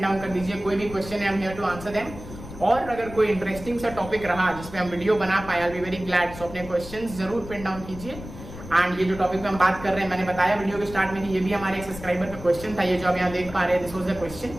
down कर दीजिए। कोई भी question है, I'm here to answer them. और अगर कोई इंटरेस्टिंग सा टॉपिक रहा जिसपे हम वीडियो बना पाए, I'll be very glad. So अपने क्वेश्चंस जरूर पिन डाउन कीजिए। एंड ये जो टॉपिक पे हम बात कर रहे हैं, मैंने बताया वीडियो के स्टार्ट में कि ये भी हमारे एक सब्सक्राइबर का क्वेश्चन था। ये जो आप यहाँ देख पा रहे हैं, दिस वाज द क्वेश्चन।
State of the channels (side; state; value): left; noise; rumble, 13 dB below the sound